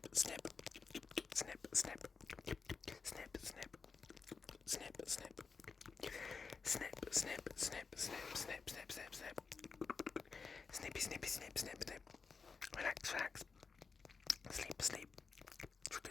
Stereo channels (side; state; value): right; quieter; 5.0 dB